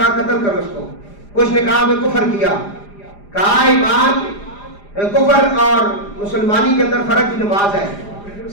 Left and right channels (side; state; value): right; late; 4.9 ms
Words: قتل کرو اس کو، کچھ نے کہا میں کفر کیا، کہا ایمان کفر اور مسلمانی کے اندر فرق کی نماز ہے،